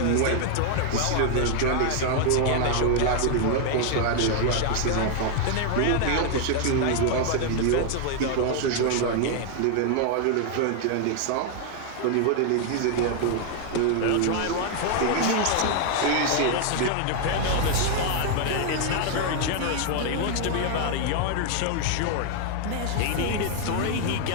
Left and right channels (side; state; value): both; different; correlation 0.00